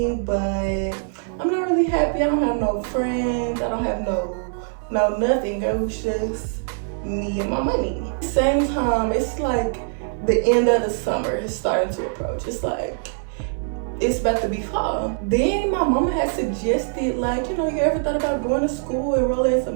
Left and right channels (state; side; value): silent; left; 59 dB below the other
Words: but I'm not really happy. I don't have no friends. I don't have no nothing. It was just me and my money. At the same time, it's like the end of the summer is starting to approach. It's like, it's about to be fall. Then my mama had suggested, like, you know, you ever thought about going to school, enrolling in